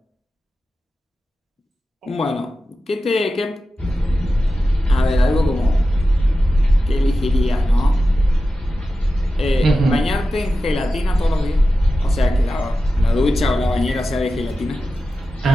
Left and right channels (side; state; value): both; normal; correlation 0.93